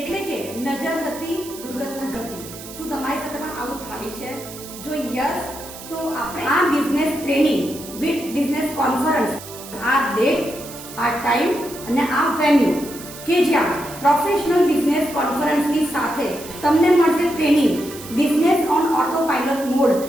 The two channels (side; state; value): right; noise; hiss, 14 dB below the sound